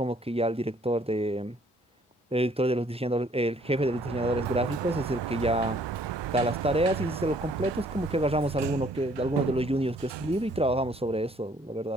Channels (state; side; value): normal; both; correlation 0.62